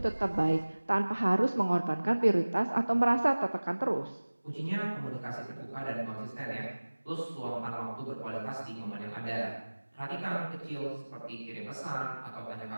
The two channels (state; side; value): inverted; both; correlation -1.00